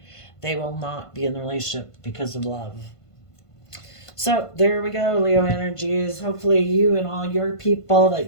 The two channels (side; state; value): right; late; 1.5 ms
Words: They will not be in the relationship because of love. So there we go, Leo energies. Hopefully you and all your people